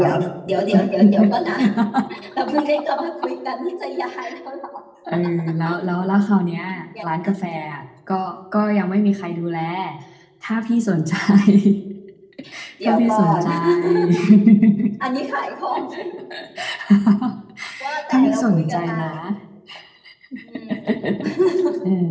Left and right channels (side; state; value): both; identical; correlation 1.00